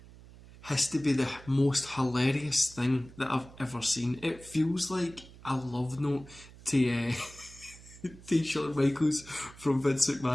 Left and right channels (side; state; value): right; noise; hum, 20 dB below the sound